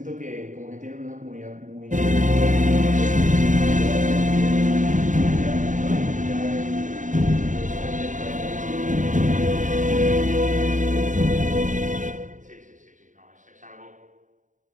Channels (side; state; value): left; late; 0.37 ms